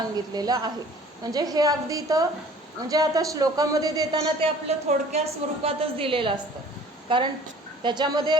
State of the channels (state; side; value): normal; both; correlation 0.50